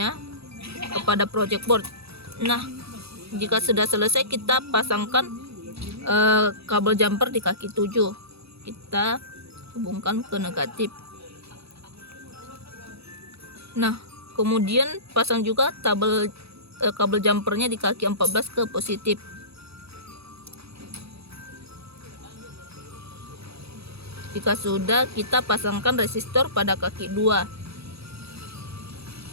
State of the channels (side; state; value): left; late; 0.78 ms